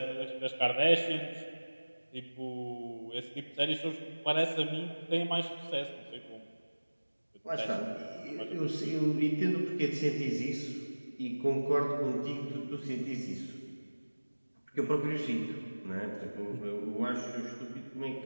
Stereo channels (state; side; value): inverted; both; correlation -1.00